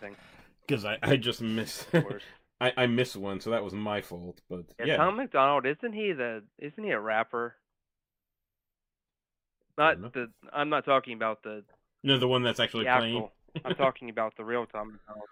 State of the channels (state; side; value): identical; both; correlation 1.00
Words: Because I just missed. I missed one, so that was my fault. But yeah, Tom McDonald, isn't he a rapper? I'm not talking about the the one that's actually playing. I'm talking about the real Tom McDonald.